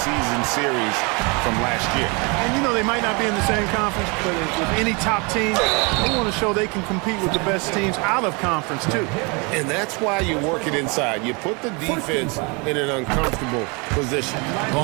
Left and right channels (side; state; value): left; quieter; 30.2 dB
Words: series from last year. And you know, they might not be in the same conference, but with any top team, they want to show they can compete with the best teams out of conference too. And that's why you work it inside. You put the defense in an uncomfortable position. The